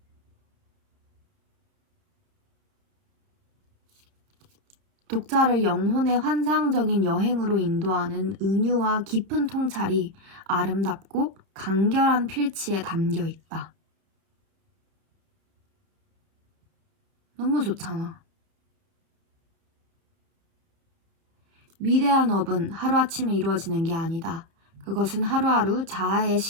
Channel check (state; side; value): late; left; 31 ms